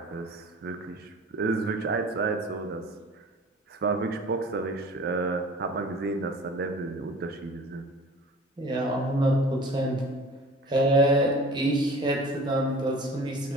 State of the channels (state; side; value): normal; both; correlation 0.44